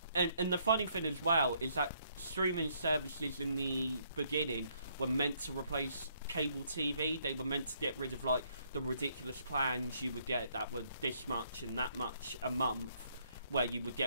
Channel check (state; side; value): inverted; both; correlation -0.69